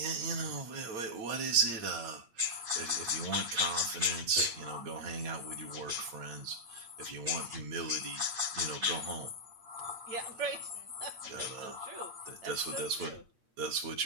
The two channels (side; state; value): left; late; 8.7 ms